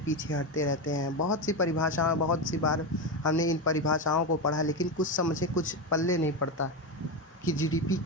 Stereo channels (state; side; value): normal; both; correlation 0.14